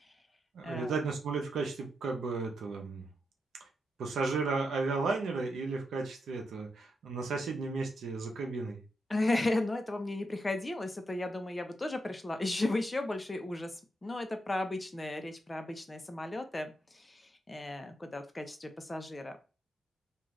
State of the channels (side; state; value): both; normal; correlation 0.83